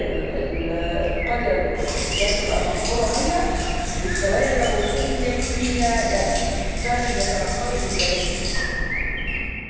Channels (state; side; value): identical; both; correlation 1.00